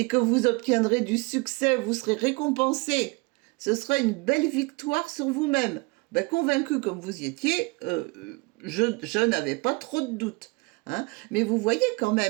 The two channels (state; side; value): quieter; left; 28.1 dB